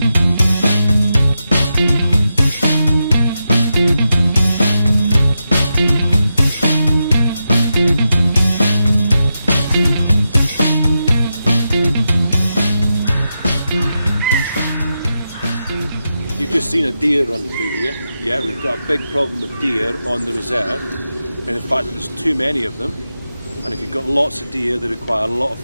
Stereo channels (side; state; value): both; inverted; correlation -0.88